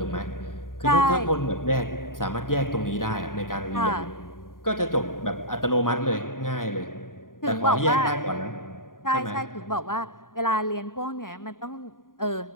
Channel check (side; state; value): right; late; 0.90 ms